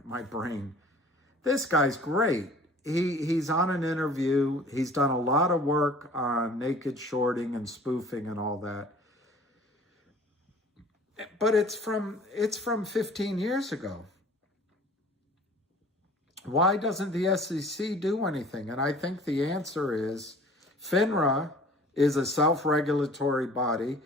brain. This guy's great. He's on an interview. He's done a lot of work on naked shorting and spoofing and all that. But it's from 15 years ago. Why doesn't the SEC do anything? And I think the answer is FINRA is a self-regulatory body,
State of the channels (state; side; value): normal; both; correlation 0.48